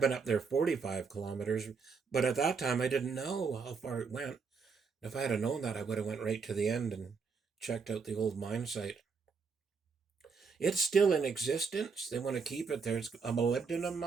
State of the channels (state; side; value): quieter; left; 5.1 dB